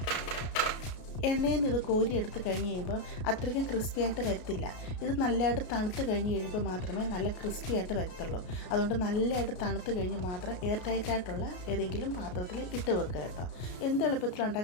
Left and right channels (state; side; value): late; right; 33 ms